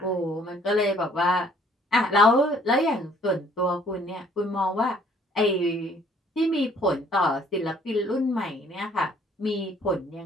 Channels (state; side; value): normal; both; correlation 0.60